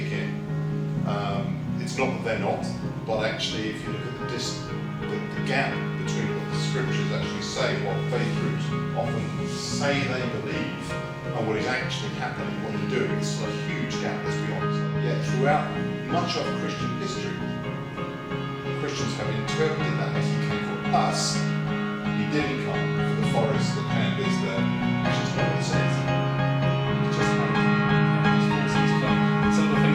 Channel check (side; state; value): both; identical; correlation 1.00